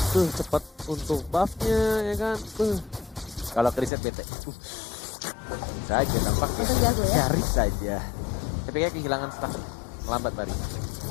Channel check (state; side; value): drops out; right; at 3.9 s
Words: Tuh cepet untuk buffnya ya kan. Kalau kriset bete. Saja nampaknya. Untung jago ya. Nyaris saja. Tapi kayak kehilangan stack. Lambat Mari.